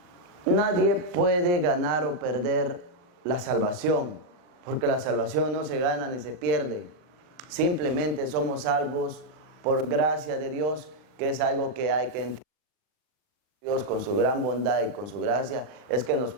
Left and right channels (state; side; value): late; left; 39 ms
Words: nadie puede ganar o perder la salvación, porque la salvación no se gana ni se pierde. Simplemente somos salvos por gracia de Dios, que es algo que hay que entender. Dios, con su gran bondad y con su gracia, es que nos